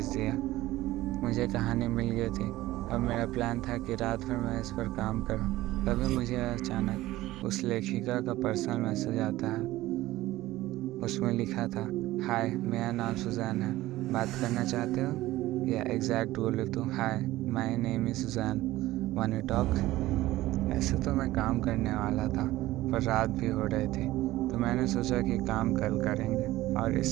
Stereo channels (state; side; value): quieter; left; 16.8 dB